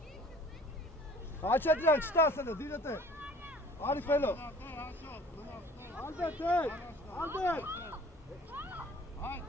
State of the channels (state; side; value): normal; both; correlation 0.50